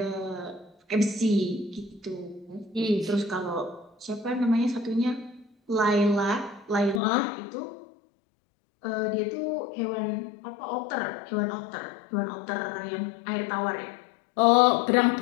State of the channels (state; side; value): drops out; right; at 7.0 s